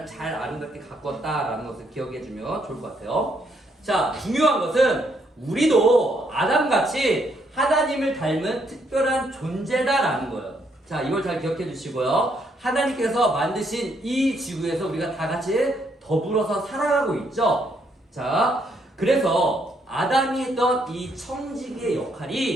잘 아름답게 가꿨다라는 것을 기억해주면 좋을 것 같아요. 자, 중요한 것은 우리도 아담같이 하나님을 닮은 특별한 존재다라는 거예요. 자, 이걸 잘 기억해 주시고요. 하나님께서 만드신 이 지구에서 우리가 다 같이 더불어서 살아가고 있죠. 자, 그래서 아담이 했던 이 청지기의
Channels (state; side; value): normal; both; correlation 0.73